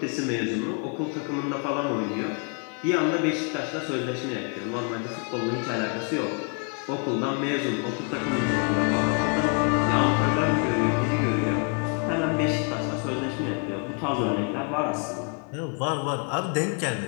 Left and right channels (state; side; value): quieter; right; 38.4 dB